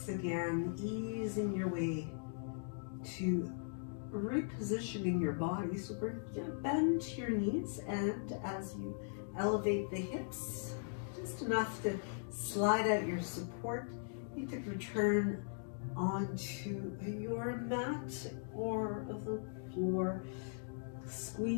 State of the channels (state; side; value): silent; right; digital silence